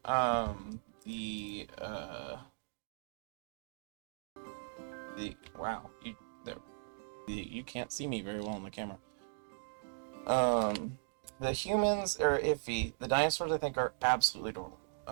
Wow, you can't see me very well on the camera. The humans are iffy. The dinosaurs, I think, are absolutely adorable.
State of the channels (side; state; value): left; silent; digital silence